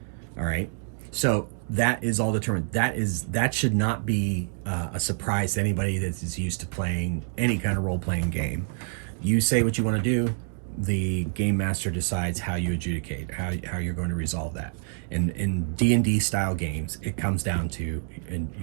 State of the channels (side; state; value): left; silent; 60 dB below the other